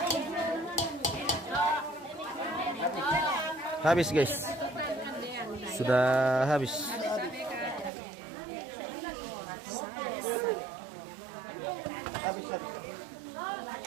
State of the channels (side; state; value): left; drops out; at 7.9 s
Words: Habis guys, sudah habis.